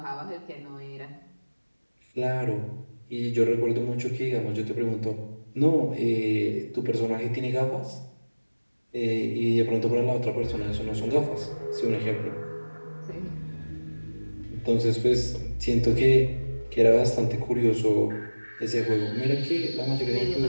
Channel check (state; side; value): inverted; both; correlation -1.00